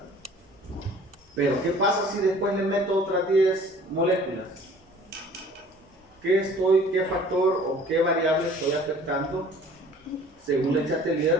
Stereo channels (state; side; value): normal; both; correlation 0.50